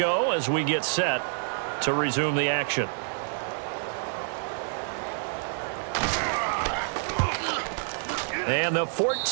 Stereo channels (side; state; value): left; silent; digital silence